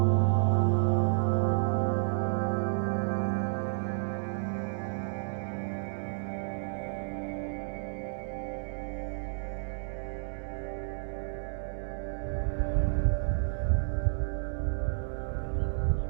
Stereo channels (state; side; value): silent; left; 57 dB below the other